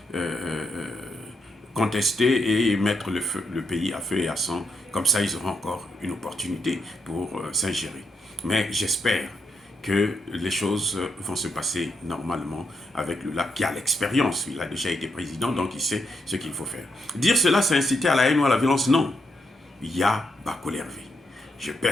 contester et mettre le pays à feu et à sang. Comme ça, ils auront encore une opportunité pour s'ingérer. Mais j'espère que les choses vont se passer normalement avec Lula, qui a l'expérience. Il a déjà été président, donc il sait ce qu'il faut faire. Dire cela, c'est inciter à la haine ou à la violence? Non. Ya Bakolervé. Je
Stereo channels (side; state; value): both; normal; correlation 0.80